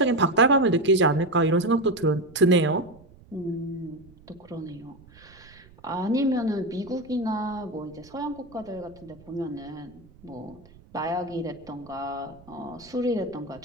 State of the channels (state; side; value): noise; right; rumble, 24 dB below the sound